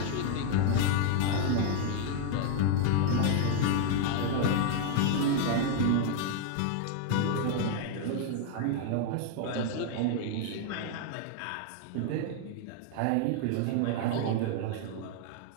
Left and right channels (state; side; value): different; both; correlation 0.00